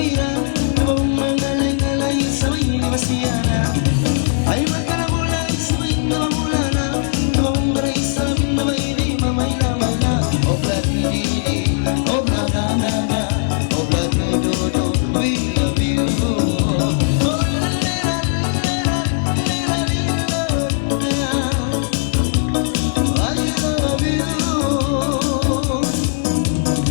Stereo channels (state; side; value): silent; right; digital silence